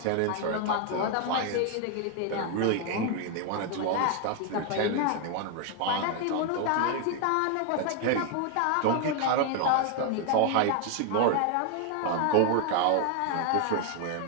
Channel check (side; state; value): both; different; correlation 0.00